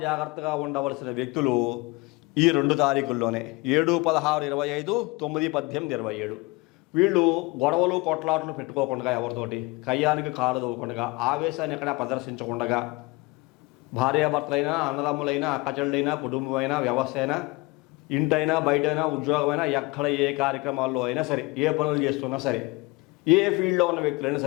జాగ్రత్తగా ఉండవలసిన వ్యక్తులు ఈ 2 తారీఖుల్లోనే 7, 16, 25, 9, 18, 27 వీళ్ళు గొడవలు కొట్లాటలు పెట్టుకోకుండా, ఎవరితోటి కయ్యానికి కాలు దవ్వకుండా, ఆవేశాన్ని ఎక్కడ ప్రదర్శించకుండా, భార్యాభర్తలైనా, అన్నదమ్ములైనా, అక్కచెళ్ళైనా, కుటుంబమైనా, వ్యవస్థ అయినా, ఇంటైనా, బయటైనా, ఉద్యోగమైనా, ఎక్కడ ఏ కార్యక్రమాల్లో అయినా సరే, ఏ పనులు చేస్తున్నా సరే, ఏ ఫీల్డ్లో ఉన్న వ్యక్తులైనా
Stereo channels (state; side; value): quieter; right; 24.6 dB